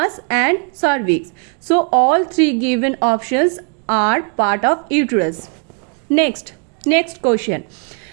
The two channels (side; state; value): left; quieter; 38.3 dB